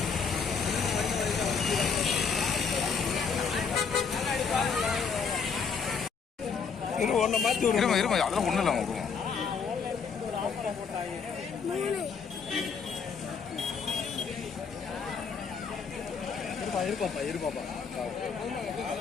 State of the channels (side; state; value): right; quieter; 5.9 dB